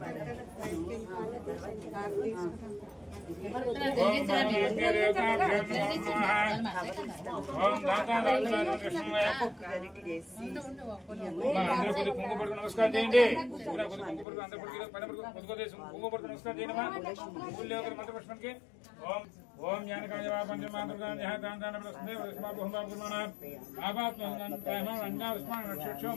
नमस्कार చేయండి. नमस्कार చేయండి. मंत्रपुष्पंके ओम ओम ज्ञानकाय पंचमातृका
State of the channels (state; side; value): drops out; right; at 14.2 s